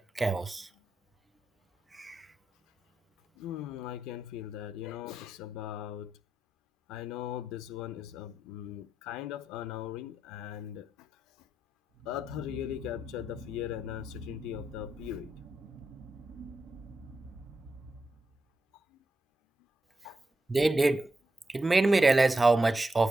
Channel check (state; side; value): normal; both; correlation 0.86